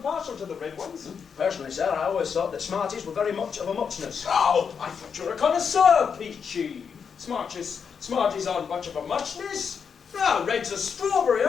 to the red ones. Personally, sir, I always thought that Smarties were very much of a muchness. Oh, I thought you were a connoisseur, Peachy. Smarties aren't much of a muchness. No, reds are strawberry,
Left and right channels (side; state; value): right; quieter; 6.5 dB